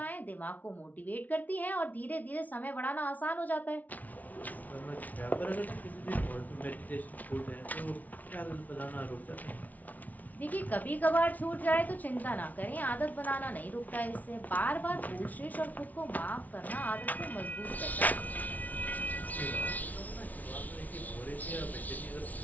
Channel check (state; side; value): late; right; 0.075 ms